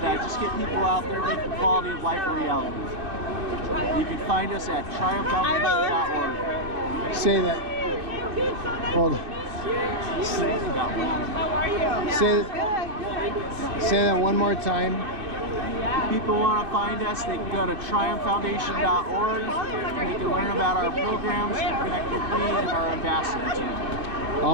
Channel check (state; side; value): late; left; 2.5 ms